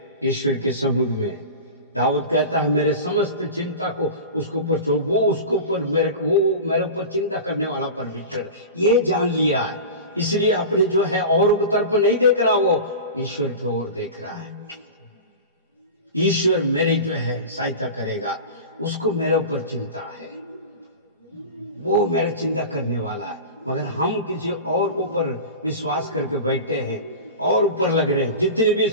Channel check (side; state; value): both; inverted; correlation -0.31